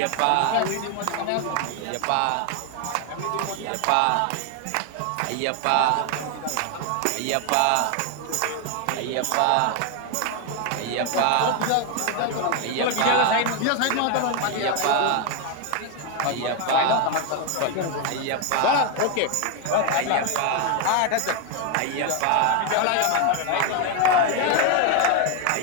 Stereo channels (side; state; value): both; different; correlation 0.01